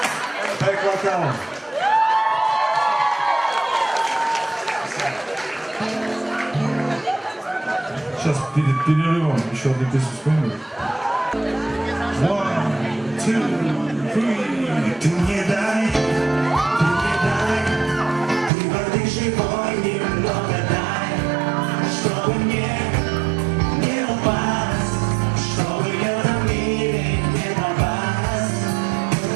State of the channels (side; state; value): left; drops out; at 18.5 s